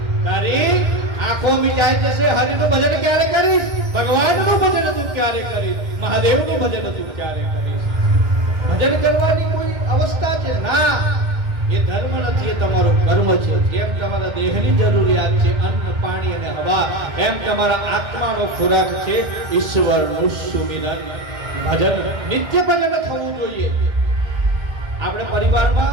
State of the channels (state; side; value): late; left; 2.1 ms